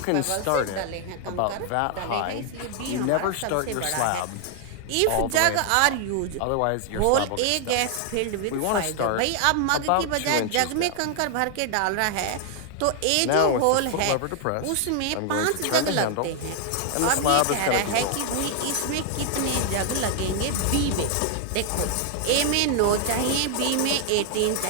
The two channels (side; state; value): both; different; correlation 0.00